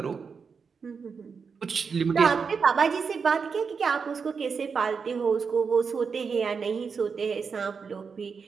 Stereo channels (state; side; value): quieter; left; 5.6 dB